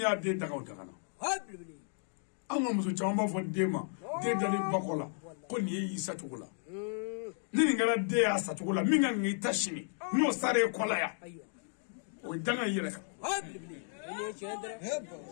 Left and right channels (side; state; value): right; silent; 55 dB below the other